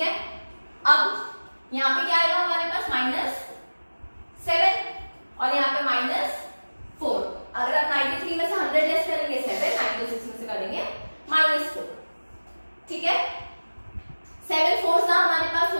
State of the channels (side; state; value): both; inverted; correlation -1.00